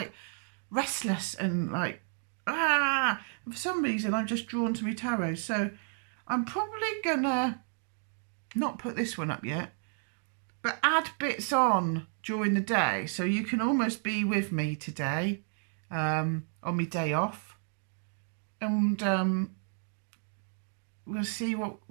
restless and like, and for some reason I'm just drawn to my tarot. So I'm probably going to not put this one up yet, but add bits on during the day. So you can almost be with me today on my day off. And we'll see what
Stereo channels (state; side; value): silent; left; 57 dB below the other